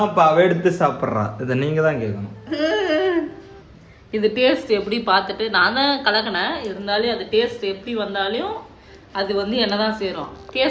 அப்ப அவ எடுத்து சாப்பிட்றா. இதை நீங்க தான் கேட்கணும். இது டேஸ்ட் எப்படி பார்த்துட்டு நான் தான் கலக்கினேன். இருந்தாலும் அது டேஸ்ட் எப்படி வந்தாலும் அது வந்து என்னதான் சேரும்.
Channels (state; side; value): identical; both; correlation 1.00